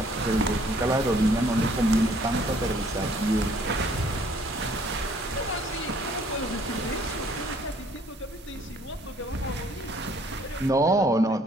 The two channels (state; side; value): normal; both; correlation 0.61